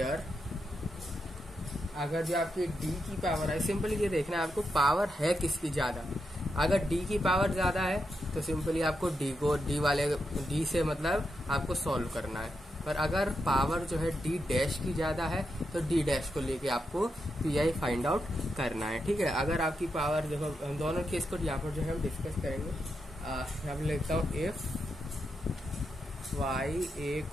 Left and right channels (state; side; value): normal; both; correlation 0.85